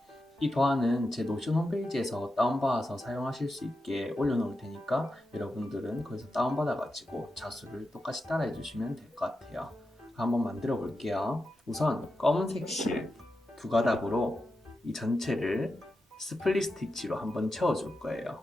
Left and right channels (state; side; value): normal; both; correlation 0.89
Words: 이 도안은 제 노션 홈페이지에서 다운받아서 사용하실 수 있게 올려놓을 테니까 여러분들은 거기서 다운받아가지고 자수를 똑같이 따라해 주시면 될 것 같아요. 한번 만들어 볼게요. 우선 검은색 실 두 가닥으로 이 전체를 스플릿 스티치로 한번 채워줄 거예요.